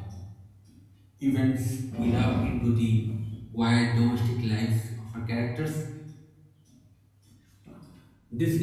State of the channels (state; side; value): identical; both; correlation 1.00